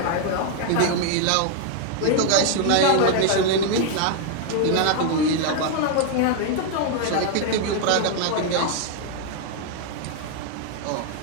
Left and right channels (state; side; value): different; both; correlation 0.00